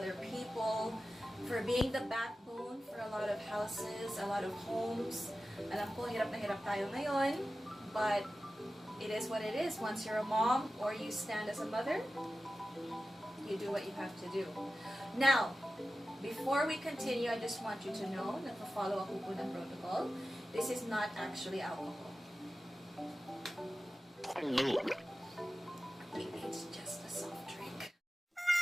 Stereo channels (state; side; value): normal; both; correlation 0.94